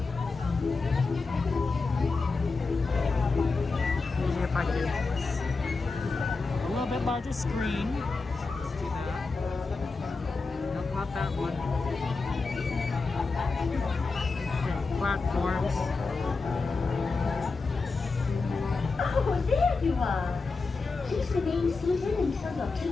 Maybe if I do this. A little bit larger screen. Let's do that. Nope, not that one. Okay, platforms. Oh, there you are. Please remain seated until your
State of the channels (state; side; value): quieter; right; 4.1 dB